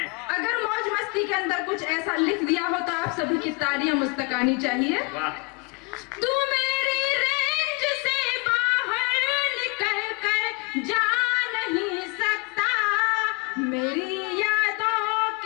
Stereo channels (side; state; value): right; quieter; 28.5 dB